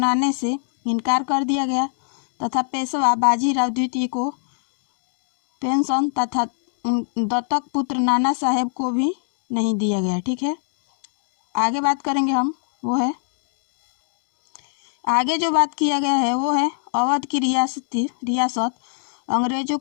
से इनकार कर दिया गया तथा पेशवा बाजीराव द्वितीय को पेंशन तथा दत्तक पुत्र नाना साहेब को भी नहीं दिया गया। ठीक है, आगे बात करेंगे हम वो है आगे जो बात किया गया है वो है अवध की रियासत अंग्रेजों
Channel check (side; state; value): right; silent; digital silence